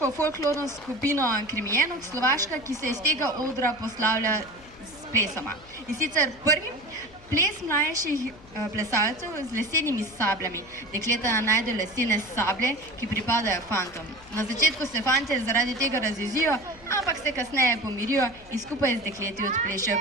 folklorno skupino Krimijenok Slovaška, ki se iz tega odra poslavlja s plesoma. In sicer prvi ples mlajših plesalcev z lesenimi sabljami. Dekleta najdejo lesene sablje, ki pripadajo fantom. Na začetku se fantje zaradi tega razjezijo, ampak se kasneje pomirijo in skupaj z dekleti odplešejo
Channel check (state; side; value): noise; left; hum, 23 dB below the sound